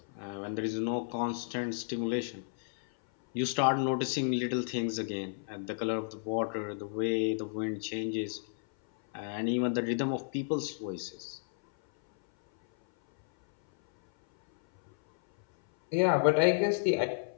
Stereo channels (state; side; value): silent; right; 56 dB below the other